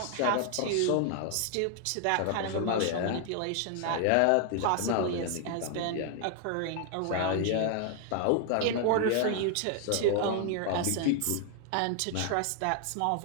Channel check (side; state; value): both; different; correlation 0.00